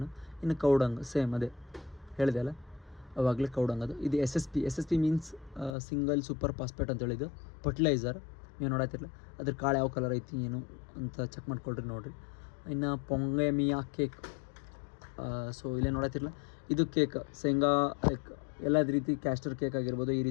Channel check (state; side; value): drops out; right; at 5.8 s